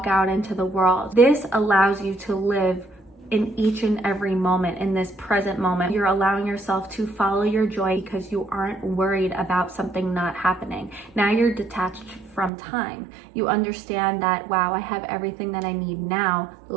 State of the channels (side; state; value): left; drops out; at 12.5 s